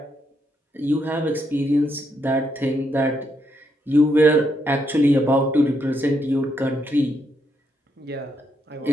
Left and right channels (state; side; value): normal; both; correlation 0.78